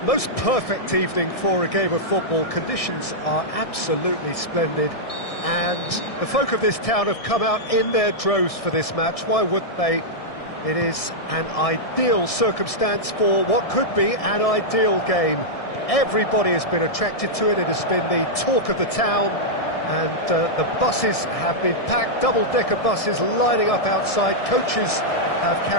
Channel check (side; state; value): right; late; 1.6 ms